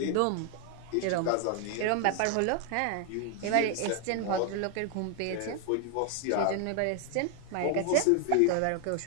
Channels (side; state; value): both; different; correlation 0.00